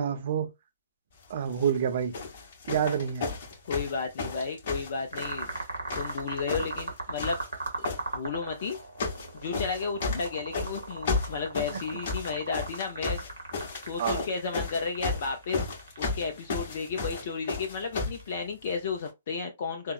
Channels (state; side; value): inverted; both; correlation -0.52